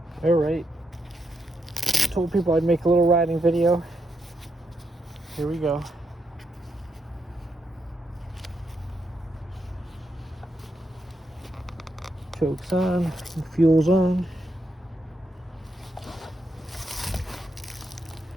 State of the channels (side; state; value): both; normal; correlation 0.81